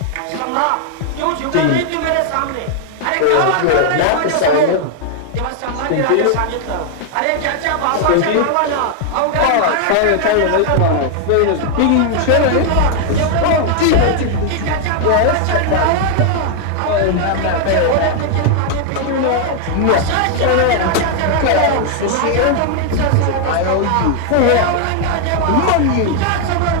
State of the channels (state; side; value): different; both; correlation 0.00